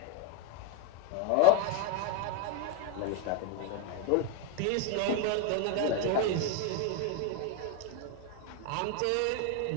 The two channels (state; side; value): different; both; correlation 0.02